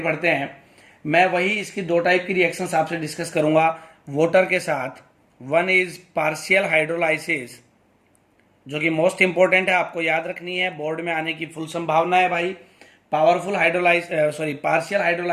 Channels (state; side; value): identical; both; correlation 1.00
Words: बढ़ते हैं। मैं वही इसकी 2 टाइप की रिएक्शंस आपसे डिस्कस करूंगा वाटर के साथ। वन इज पार्शियल हाइड्रोलाइसिस, जो कि मोस्ट इंपॉर्टेंट है, आपको याद रखनी है, बोर्ड में आने की फुल संभावना है भाई। पावरफुल पार्शियल